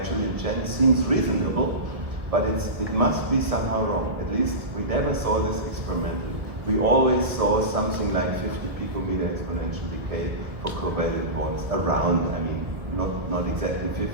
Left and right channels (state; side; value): late; left; 1.6 ms